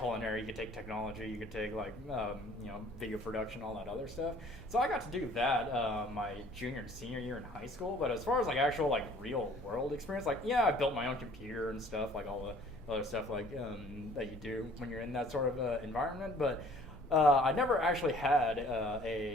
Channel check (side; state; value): both; normal; correlation 0.54